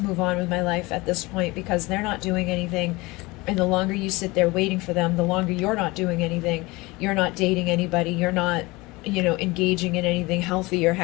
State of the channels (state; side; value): quieter; right; 22.6 dB